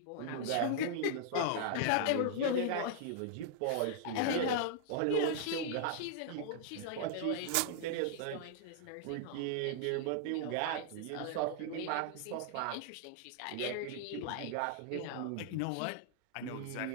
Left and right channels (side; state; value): both; different; correlation -0.01